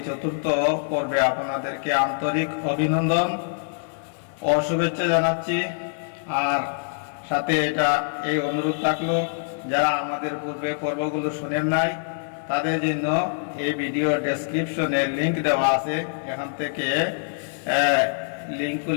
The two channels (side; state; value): right; silent; digital silence